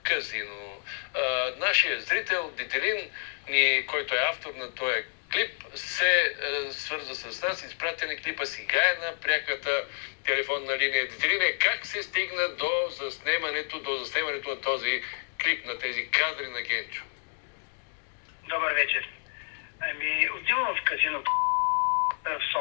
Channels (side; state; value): right; silent; digital silence